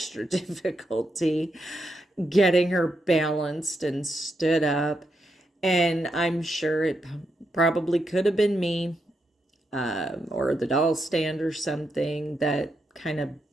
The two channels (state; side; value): normal; both; correlation 0.83